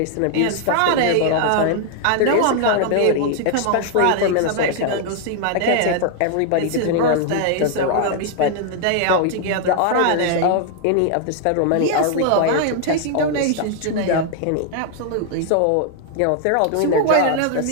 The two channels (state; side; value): different; both; correlation 0.00